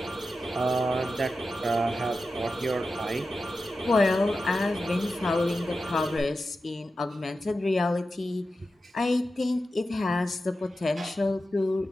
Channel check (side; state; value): both; normal; correlation 0.92